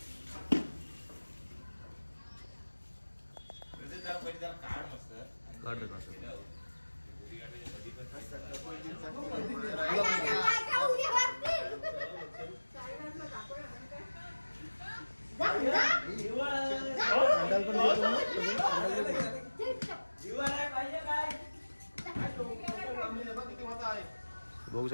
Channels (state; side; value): inverted; both; correlation -1.00